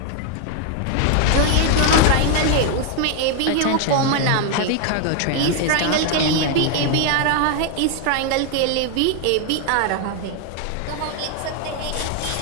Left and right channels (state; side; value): different; both; correlation 0.01